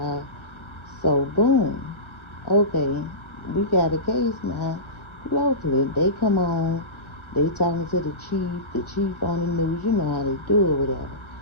So boom. Okay, we got a case now. Locally, they come on. They talking to the chief. The chief on the news. You know how they do it, whatever.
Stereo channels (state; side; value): late; right; 1.4 ms